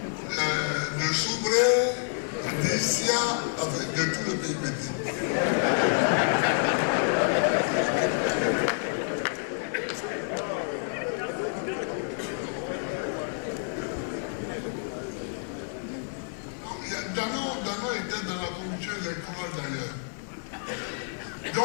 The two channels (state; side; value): silent; right; 59 dB below the other